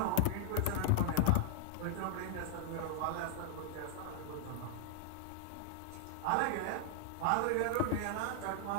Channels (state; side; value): different; both; correlation -0.01